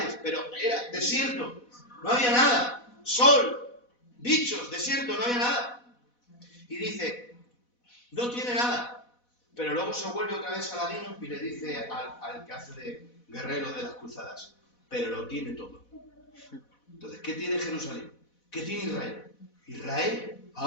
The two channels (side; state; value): right; late; 4.1 ms